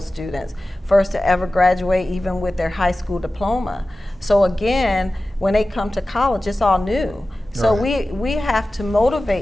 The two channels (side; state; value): both; normal; correlation 0.95